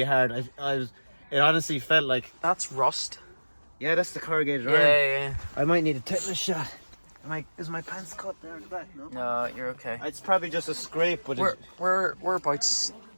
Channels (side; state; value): both; inverted; correlation -1.00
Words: hard. It honestly felt like. That's rust. Yeah, that's the corrugated Yeah, iron. yeah. I might need a tetanus shot. Is my pants cut there at the back? No. No, you're okay. It's probably just a scrape, but Whereabouts?